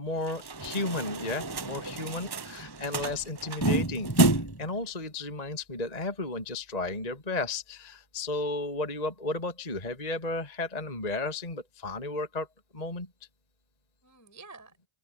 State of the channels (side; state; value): right; late; 1.1 ms